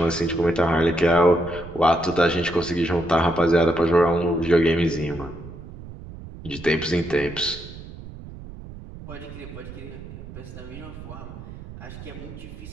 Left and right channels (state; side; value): noise; right; rumble, 14 dB below the sound